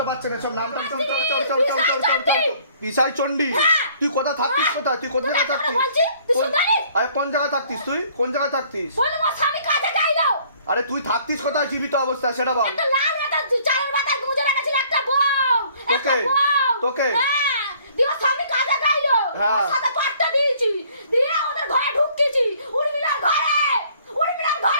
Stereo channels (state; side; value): inverted; both; correlation -0.58